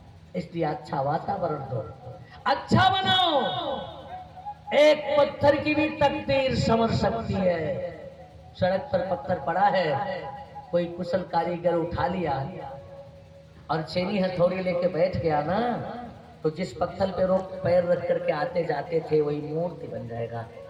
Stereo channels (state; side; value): identical; both; correlation 1.00